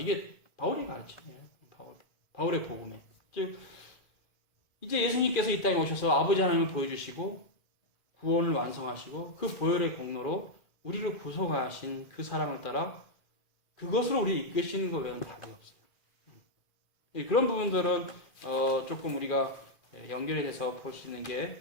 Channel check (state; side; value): late; right; 2.5 ms